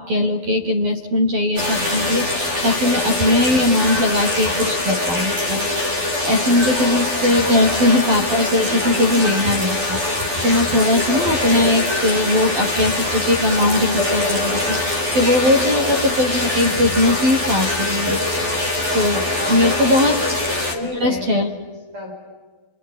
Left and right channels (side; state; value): left; late; 12 ms